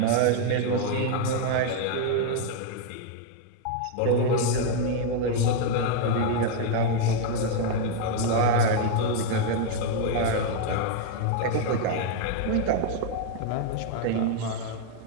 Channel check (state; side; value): different; both; correlation 0.00